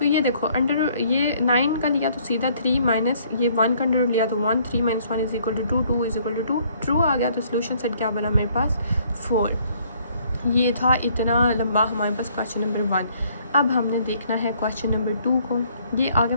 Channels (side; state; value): both; inverted; correlation -0.62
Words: ये देखो ये 9 का लिया तो सीधा 3 माइनस ये 1 का अंडर लिया तो 1, 3 - 1 is equal to 2, 2 is equal to 2, true आ गया। तो सोल्यूशन सेट क्या बना मेरे पास 4। ये था इतना लंबा हमारे पास क्वेश्चन नंबर 1। अब हमने देखना है क्वेश्चन नंबर 2 को। ये आगे